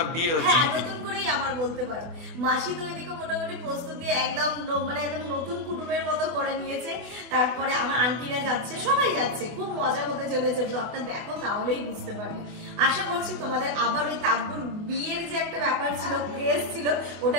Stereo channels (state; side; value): late; left; 24 ms